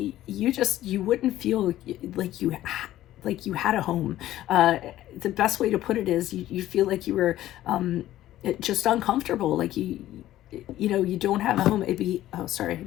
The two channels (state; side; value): quieter; right; 14.0 dB